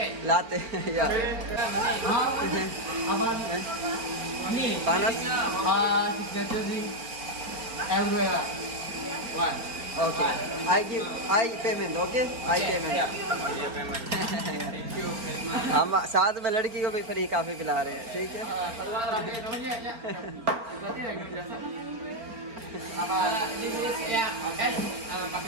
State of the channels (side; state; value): left; late; 4.4 ms